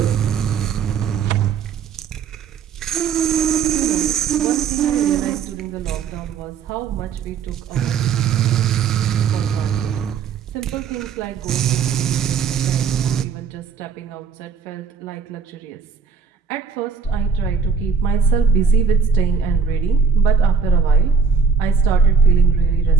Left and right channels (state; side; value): quieter; left; 5.8 dB